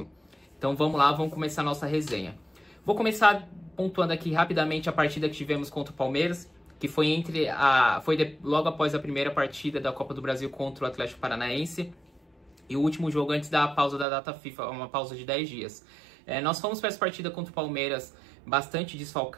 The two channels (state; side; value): drops out; left; at 14.1 s